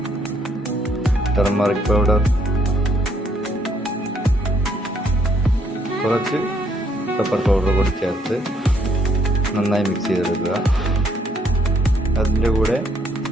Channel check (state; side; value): normal; both; correlation 0.70